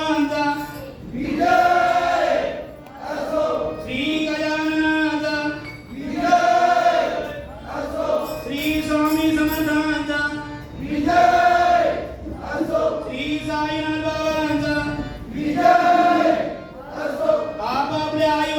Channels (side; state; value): both; identical; correlation 1.00